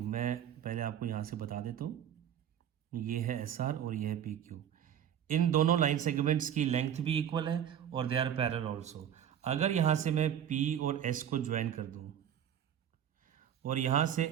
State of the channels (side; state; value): left; quieter; 9.6 dB